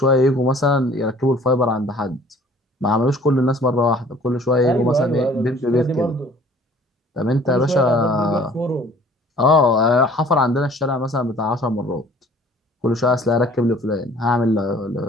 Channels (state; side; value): normal; both; correlation 0.52